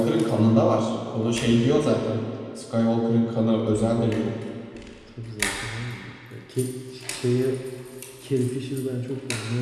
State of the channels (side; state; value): both; identical; correlation 1.00